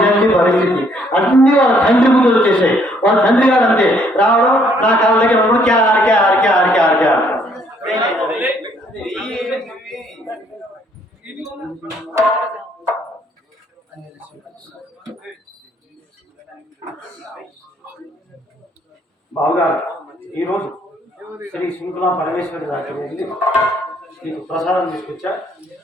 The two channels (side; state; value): both; normal; correlation 0.66